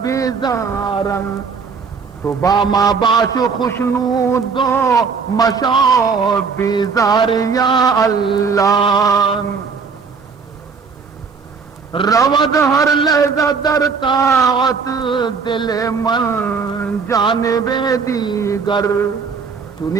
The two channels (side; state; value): left; quieter; 5.3 dB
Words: بیزارن تو باما باش خوشنود دو مشاو بیزار یا اللہ رود ہر لحظہ در طاعت دل من جانب دیگر